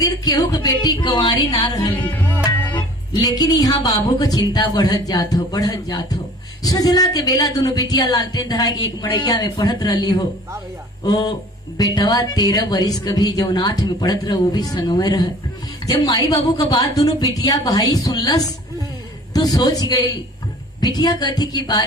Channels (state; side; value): normal; both; correlation 0.48